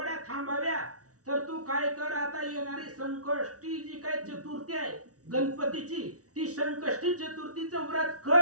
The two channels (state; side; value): late; left; 0.67 ms